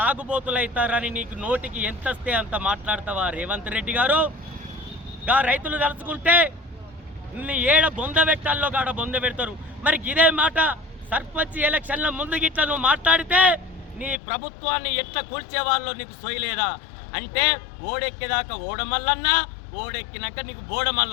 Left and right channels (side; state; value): right; drops out; at 14.2 s